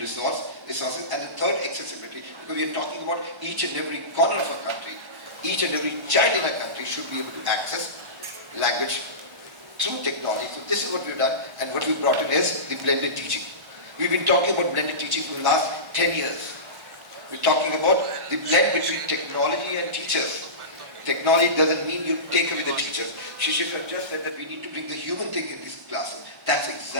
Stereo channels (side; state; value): left; late; 1.1 ms